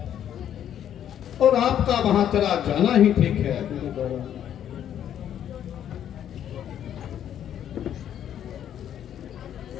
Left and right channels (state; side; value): quieter; right; 10.1 dB